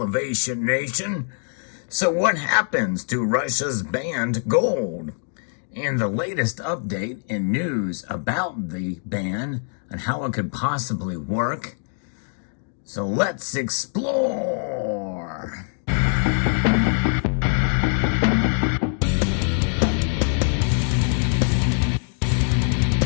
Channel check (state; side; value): silent; right; 55 dB below the other